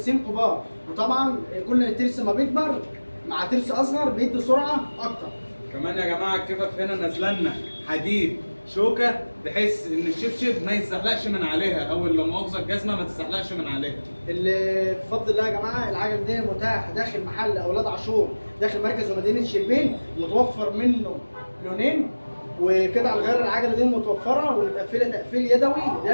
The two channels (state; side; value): inverted; both; correlation -1.00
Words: كبار، وطبعا كل ترس ما بيكبر مع ترس اصغر بيدي سرعه اكتر. كمان يا جماعه الكفف هنا نازله لنا حديد شوكه بحيث ان الشبشب ما يتزحلقش من عليها، او لا مؤاخذه الجزمه ما تتزحلقش من عليها. اللي بفضل الله يا جماعه العجله دي متاح داخل محل اولاد عاشور داخل مركز ومدينه شربين، متوفر منه لونين، وقطع الغيار العجله دي متوفره ومتقفله تقفيل يدوي